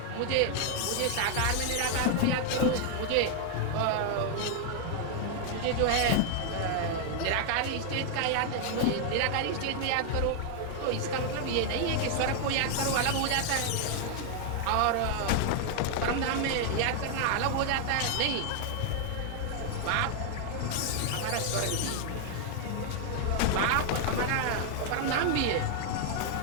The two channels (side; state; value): both; different; correlation 0.00